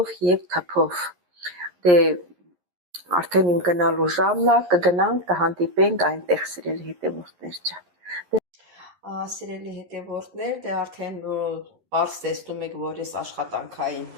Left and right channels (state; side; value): late; left; 11 ms